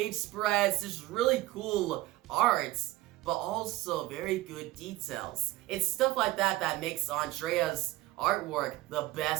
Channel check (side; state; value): left; quieter; 17.7 dB